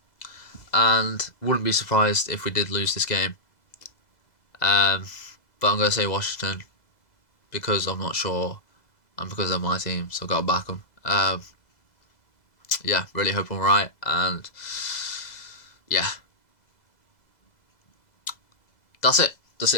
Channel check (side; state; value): right; late; 2.0 ms